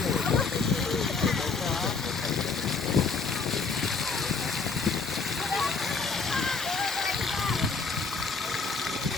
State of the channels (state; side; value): quieter; right; 4.7 dB